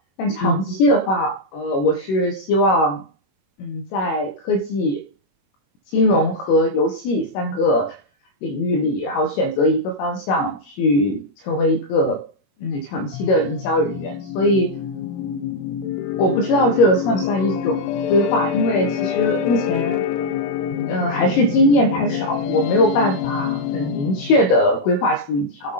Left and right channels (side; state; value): right; late; 21 ms